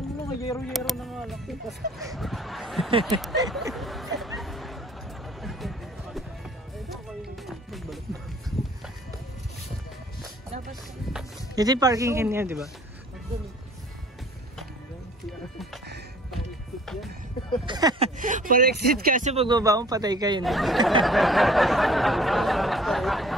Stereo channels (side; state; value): both; normal; correlation 0.52